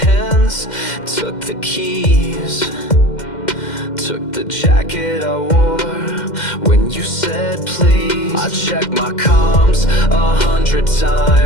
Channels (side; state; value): right; late; 2.1 ms